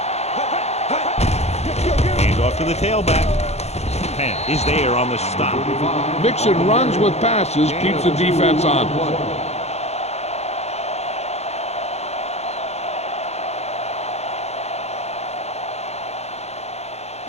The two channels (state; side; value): late; right; 0.31 ms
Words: Hand off to the tailback. Penn is there on the stop. Mixing runs with passes keeps the defense on.